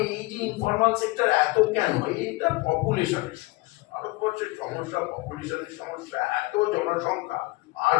এই যে ইনফরমাল সেক্টর এত কেন, এইটা পপুলেশনের সমস্যা, ভারতবর্ষের সমস্যা, পপুলেশনের সমস্যা, এত জনসংখ্যা আর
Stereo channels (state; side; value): quieter; right; 22.3 dB